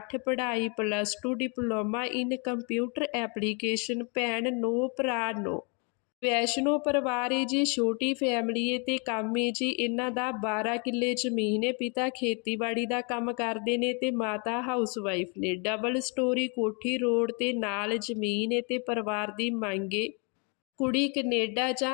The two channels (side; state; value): right; quieter; 34.8 dB